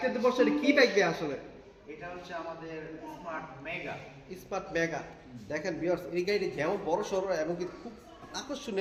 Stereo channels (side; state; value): both; identical; correlation 1.00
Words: বসে কি বাইক দিয়ে আসলে? এটা হচ্ছে আমাদের স্মার্ট মেগা। Smart mega. দেখেন ভিউয়ার্স, এই গাড়িটি যেমন বড় সড়ো এবং কি খুব